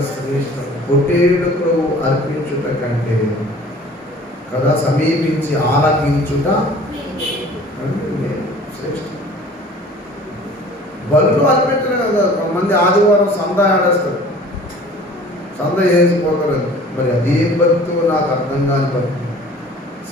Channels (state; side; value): normal; both; correlation 0.48